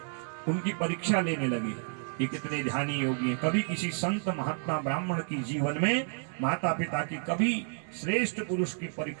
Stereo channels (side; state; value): left; silent; 57 dB below the other